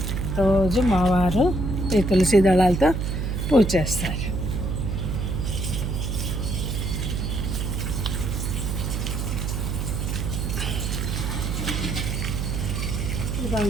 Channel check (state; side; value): noise; right; hum, 1 dB below the sound